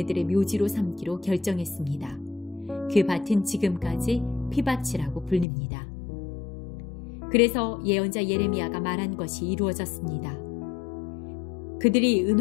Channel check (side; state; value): right; drops out; at 5.5 s